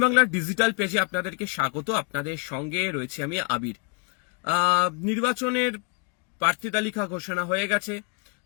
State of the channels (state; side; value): quieter; right; 35.4 dB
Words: বাংলার ডিজিটাল পেজে আপনাদেরকে স্বাগত। আপনাদের সঙ্গে রয়েছে আমি আবির। নির্বাচনের প্রার্থী তালিকা ঘোষণা হয়ে গেছে,